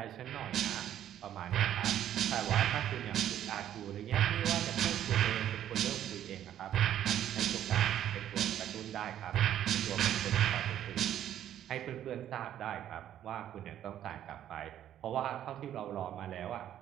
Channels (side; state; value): left; quieter; 11.1 dB